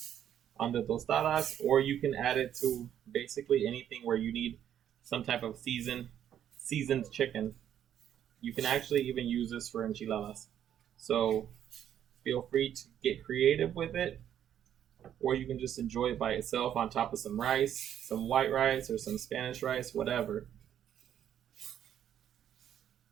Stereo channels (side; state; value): left; quieter; 10.2 dB